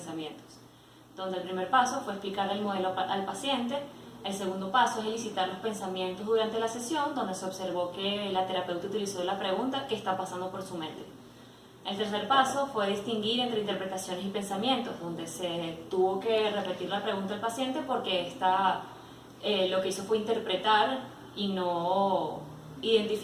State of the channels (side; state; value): both; identical; correlation 1.00